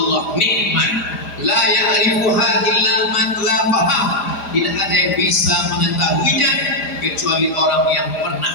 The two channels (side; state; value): right; late; 4.9 ms